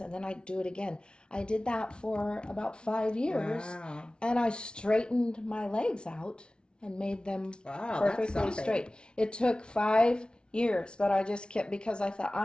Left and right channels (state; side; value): late; right; 0.056 ms